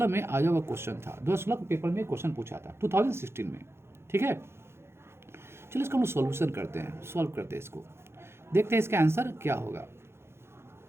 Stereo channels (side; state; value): left; late; 0.12 ms